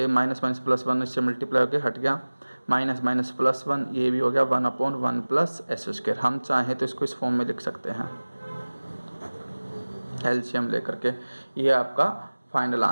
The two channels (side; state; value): both; inverted; correlation -1.00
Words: माइनस माइनस प्लस 1 इससे मल्टीप्लाई होकर हट गया, माइनस माइनस प्लस 1 ये भी हो गया 1 अपॉन 1 प्लस एस स्क्वायर। हम चाहें तो इसको इस फॉर्म में लिख सकते हैं एलसीएम लेकर के, ये आपका फाइनल